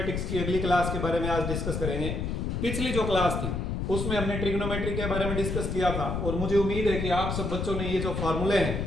की अगली क्लास के बारे में आज डिस्कस करेंगे। पिछली जो क्लास थी उसमें हमने ट्रिग्नोमेट्री के बारे में डिस्कस किया था, और मुझे उम्मीद है कि आप सब बच्चों ने ये जो फार्मूले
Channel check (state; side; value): noise; left; rumble, 2 dB below the sound